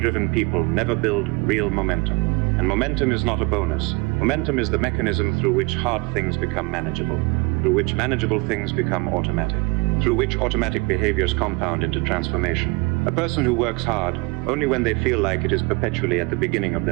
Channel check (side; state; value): left; quieter; 26.7 dB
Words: people never build real momentum. And momentum is not a bonus. Momentum is the mechanism through which hard things become manageable, through which manageable things become automatic, through which automatic behaviors compound into transformation. A person who works hard only when they feel like it is perpetually at the beginning of